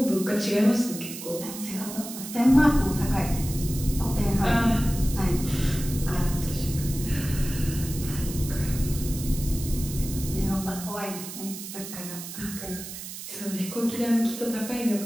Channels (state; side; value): noise; right; hiss, 10 dB below the sound